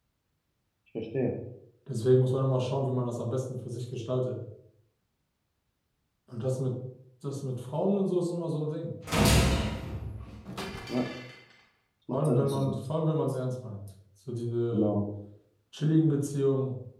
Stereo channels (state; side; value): identical; both; correlation 1.00